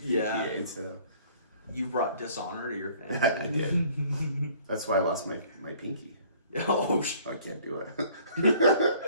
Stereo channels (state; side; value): inverted; both; correlation -0.54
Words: GPA, so you brought dishonor to your family. I did. That's why I lost my pinky. Oh, I can't do it.